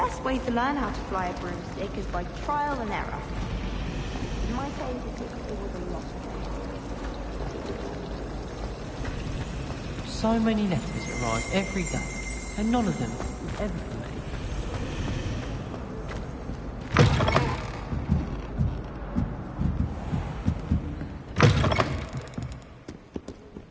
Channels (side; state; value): both; identical; correlation 1.00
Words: way to learn how to fly a broomstick is by trial and error. In my case, it was a lot. So many letters arrive every day, and none of them is ever for me.